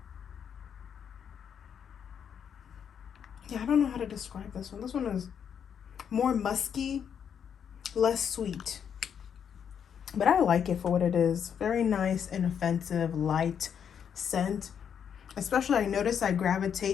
Yeah, I don't know how to describe this one. This one is more musky, less sweet. But I like it for what it is. Very nice, inoffensive, light scent. Especially, I notice I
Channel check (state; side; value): quieter; right; 7.9 dB